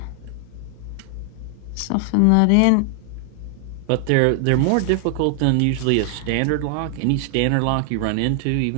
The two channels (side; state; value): both; different; correlation 0.00